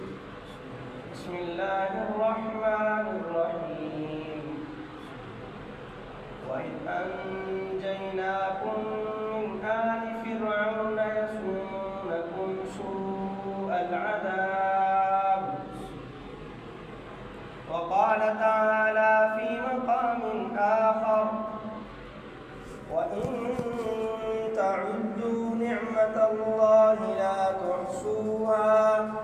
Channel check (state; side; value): identical; both; correlation 1.00